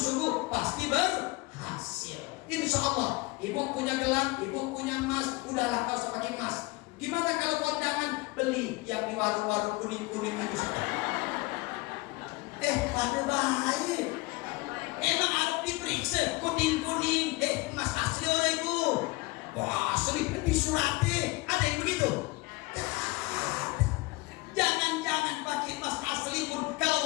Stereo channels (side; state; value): right; quieter; 23.5 dB